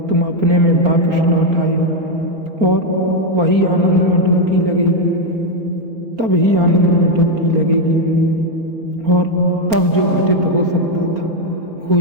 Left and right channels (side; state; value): left; late; 4.4 ms